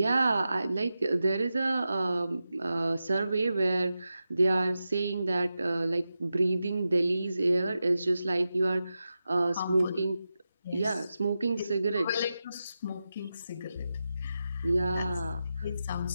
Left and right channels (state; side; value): inverted; both; correlation -0.91